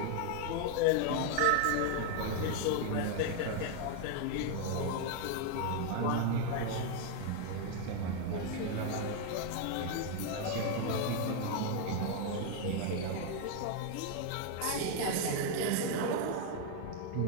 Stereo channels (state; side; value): different; both; correlation 0.01